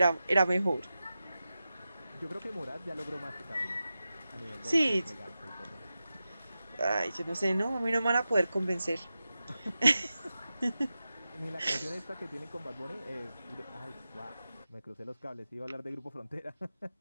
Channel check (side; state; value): both; inverted; correlation -0.93